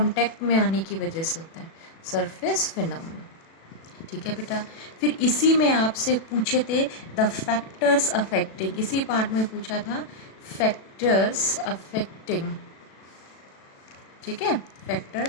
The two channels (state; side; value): late; right; 37 ms